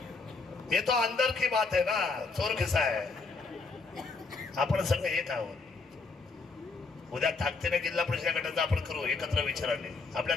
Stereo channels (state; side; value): quieter; right; 4.1 dB